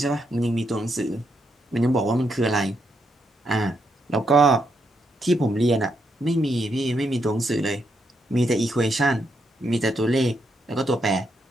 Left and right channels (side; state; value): both; normal; correlation 0.79